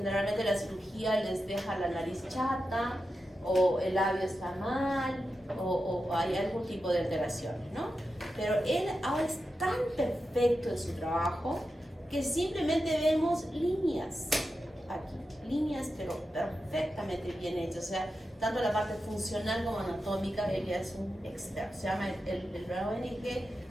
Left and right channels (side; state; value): both; normal; correlation 0.90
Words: la cirugía les deja la nariz chata, o el labio está mal, o hay algún tipo de alteraciones, ¿no? Pero él ahora es tan perfecto en su trabajo que simplemente vemos líneas aquí, líneas pero perfectamente bien hechas, o sea, tanto la parte funcional como anatómica, él ya es un experto. Se llama, el ONG